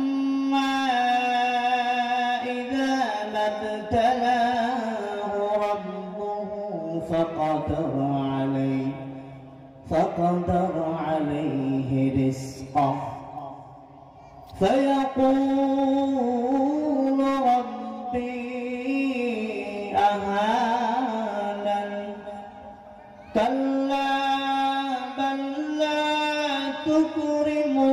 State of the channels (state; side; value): identical; both; correlation 1.00